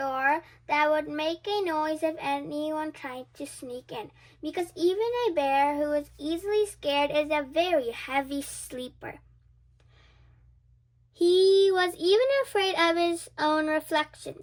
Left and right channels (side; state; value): both; identical; correlation 1.00